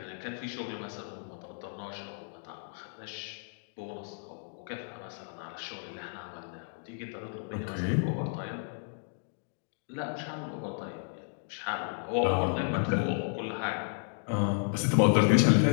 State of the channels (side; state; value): right; silent; 56 dB below the other